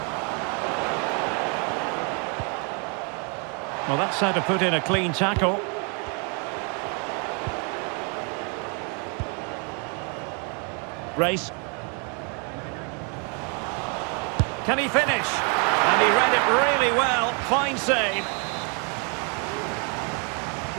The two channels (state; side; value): quieter; left; 36.5 dB